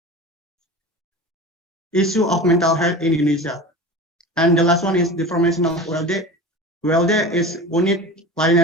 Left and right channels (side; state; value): both; normal; correlation 0.33